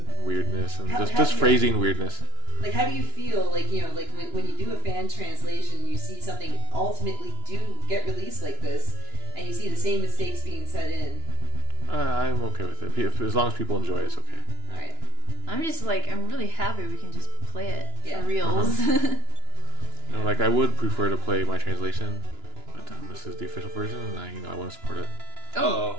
weirdness and just phrasing weirdness. Like, how do you feel, like, like when you do a fan translation, you see something ultimately do get released like this, and you see the same mistakes being set in. I'm okay with it. As long as people enjoy it, it's okay. Alright. I'm just like, I'm really happy we can just play it Yeah. for reals. You know, like I would prefer to play my translation, but this is the official version, and I want to support it.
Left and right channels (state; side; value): late; left; 2.9 ms